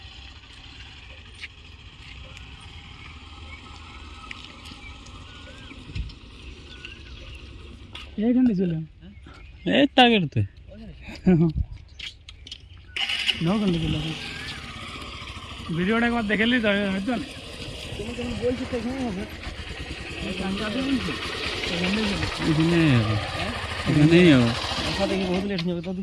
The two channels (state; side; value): identical; both; correlation 1.00